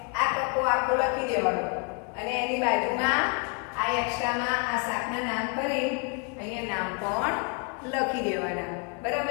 આ કક્કો આખો લખી દેવાનો અને એની બાજુમાં આ એક્સ્ટ્રામાં આ શાકના નામ કરી અહીંયા નામ પણ લખી દેવાના.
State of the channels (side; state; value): right; quieter; 35.3 dB